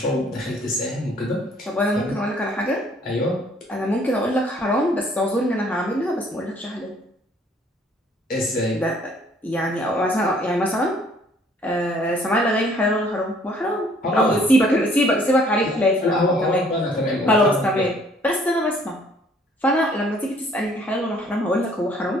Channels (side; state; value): both; normal; correlation 0.60